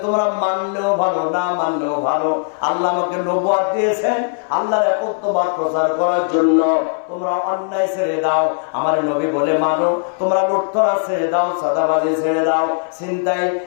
তোমরা মানলেও ভালো, না মানলেও ভালো, আল্লাহ আমাকে নবুয়ত দিয়েছেন আল্লাহর একত্ববাদ প্রচার করার জন্য। তোমরা অন্যায় ছেড়ে দাও, আমার নবী বলে মানো। তোমরা লুটতরাজ ছেড়ে দাও, চাঁদাবাজি ছেড়ে দাও, ছিনতাই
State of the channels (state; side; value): silent; right; 64 dB below the other